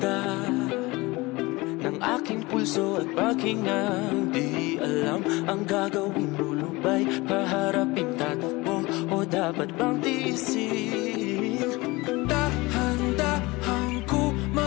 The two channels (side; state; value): right; quieter; 22.5 dB